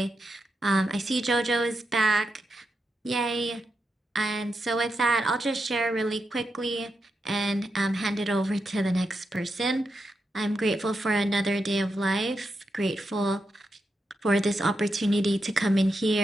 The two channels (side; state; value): both; normal; correlation 0.86